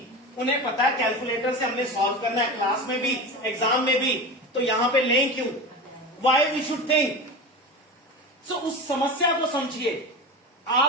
उन्हें पता है कैलकुलेटर से हमने सॉल्व करना है, क्लास में भी एग्जाम में भी, तो यहां पे लें क्यों? Why we should think. So उस समस्या को समझिए।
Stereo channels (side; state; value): both; normal; correlation 0.27